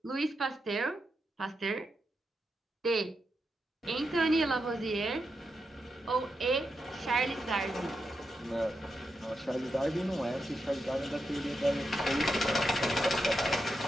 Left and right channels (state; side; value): normal; both; correlation 0.86